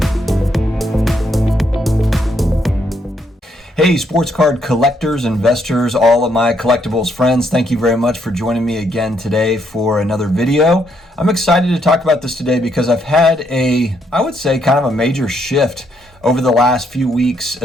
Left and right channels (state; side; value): normal; both; correlation 0.74